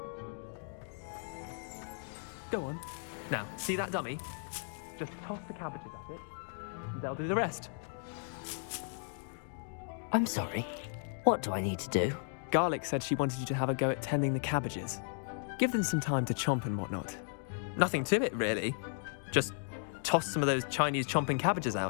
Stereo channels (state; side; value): silent; right; 54 dB below the other